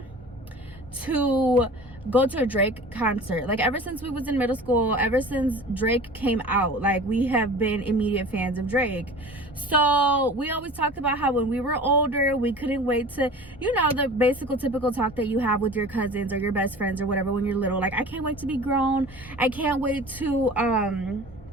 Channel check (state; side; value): normal; both; correlation 0.40